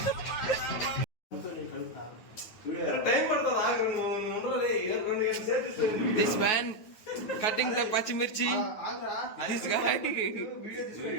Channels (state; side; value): late; right; 9.3 ms